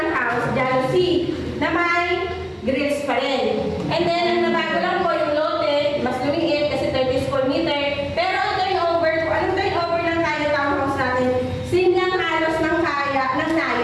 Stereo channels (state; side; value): identical; both; correlation 1.00